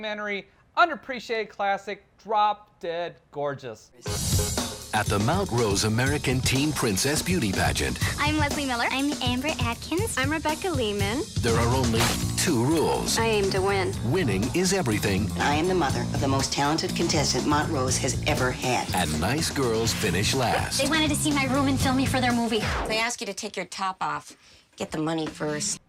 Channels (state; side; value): identical; both; correlation 1.00